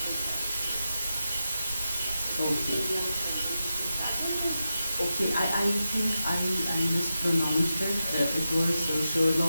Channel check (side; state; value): both; inverted; correlation -0.89